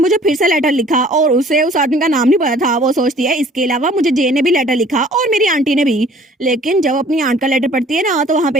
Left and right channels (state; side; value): normal; both; correlation 0.53